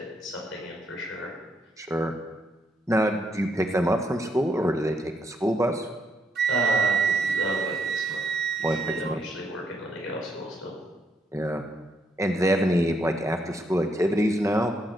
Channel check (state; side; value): normal; both; correlation 0.75